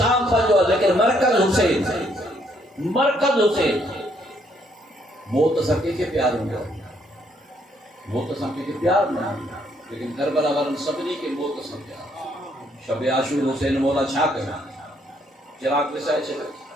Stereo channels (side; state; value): both; normal; correlation 0.70